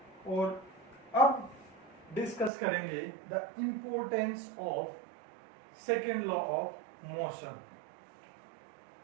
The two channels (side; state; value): left; drops out; at 2.5 s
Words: और अब डिस्कस करेंगे the importance of second law of motion.